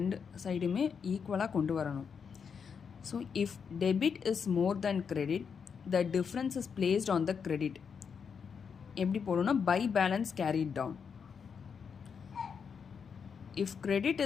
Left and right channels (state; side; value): quieter; right; 6.4 dB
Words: சைடுமே ஈக்குவலாக கொண்டு வரணும். So if debit is more than credit, the difference is placed on the credit. எப்படி போடணும்னா by balance carried down. If credit